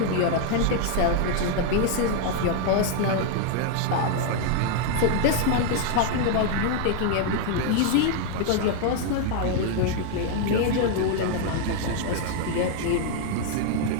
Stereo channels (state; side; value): different; both; correlation 0.00